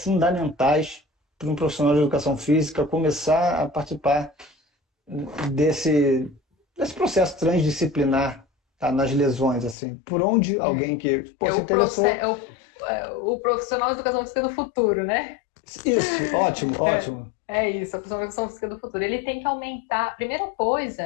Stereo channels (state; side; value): drops out; right; at 9.8 s